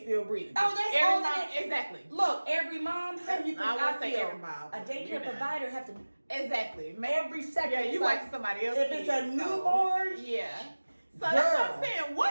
still breathing. Oh, that's every all mom. Exactly. Look, every mom. How you think I would say feel? every mom. A daycare provider have to exactly every second. Yeah, you watching somebody else. If it's a newborn, yeah. So that's what I'm saying.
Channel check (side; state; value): both; inverted; correlation -1.00